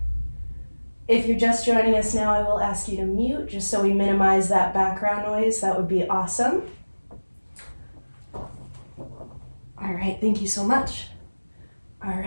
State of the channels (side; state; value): both; inverted; correlation -1.00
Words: if you're just joining us now, I will ask you to mute just so we minimize that background noise. That would be awesome. All right, thank you so much. All